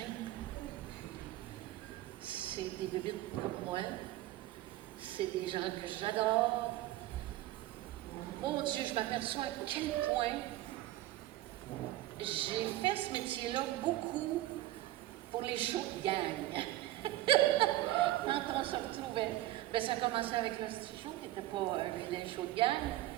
c'est des bébites comme moi. C'est des gens que j'adore. Oh Dieu, je m'aperçois à quel point j'ai fait ce métier-là beaucoup pour les shows de gang. Quand on se retrouvait, ben, ça commençait avec le petit show, qui n'était pas un vilain show de gang.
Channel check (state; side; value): quieter; left; 15.7 dB